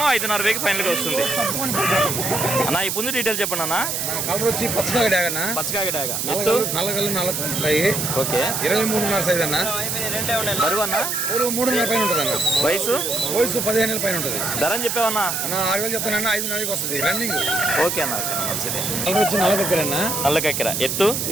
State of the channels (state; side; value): noise; right; hiss, 1 dB below the sound